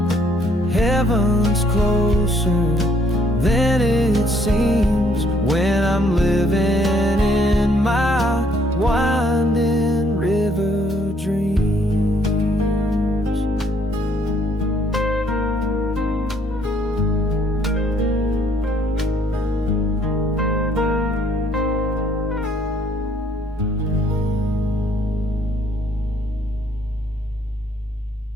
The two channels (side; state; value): both; normal; correlation 0.66